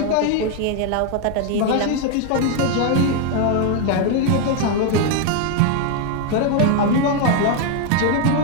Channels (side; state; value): both; different; correlation 0.01